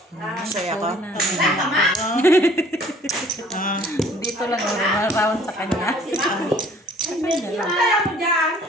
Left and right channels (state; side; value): normal; both; correlation 0.54